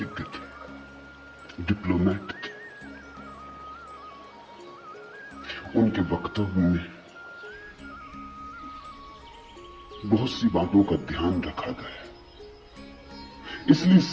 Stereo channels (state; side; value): identical; both; correlation 1.00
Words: थे, डिप्लोमेट थे। उनके वक्तव्य में बहुत सी बातों का ध्यान रखा गया, इसलिए